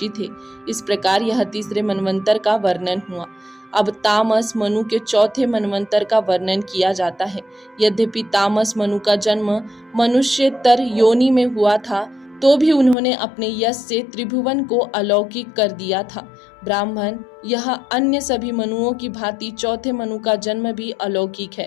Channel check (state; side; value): drops out; right; at 13.0 s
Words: थे। इस प्रकार यह तीसरे मनवंतर का वर्णन हुआ। अब तामस मनु के चौथे मनवंतर का वर्णन किया जाता है। यद्यपि तामस मनु का जन्म मनुष्यतर योनि में हुआ था, तो भी उन्होंने अपने यश से त्रिभुवन को अलौकिक कर दिया था। ब्राह्मण यह अन्य सभी मनुओं की भांति चौथे मनु का जन्म भी अलौकिक